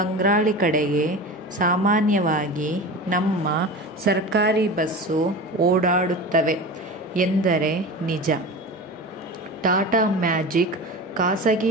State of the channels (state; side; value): normal; both; correlation 0.31